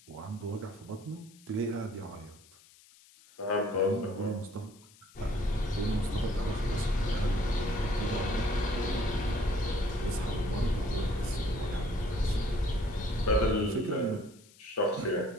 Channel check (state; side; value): noise; left; hiss, 25 dB below the sound